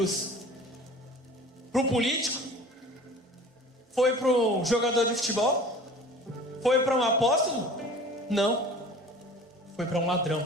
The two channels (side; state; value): both; normal; correlation 0.43